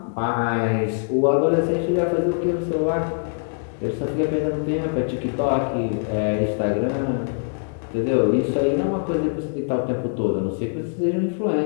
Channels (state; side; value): silent; right; digital silence